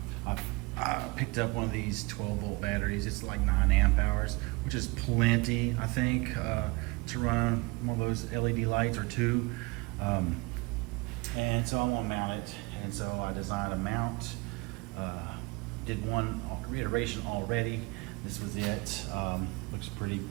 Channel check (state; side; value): quieter; left; 25.5 dB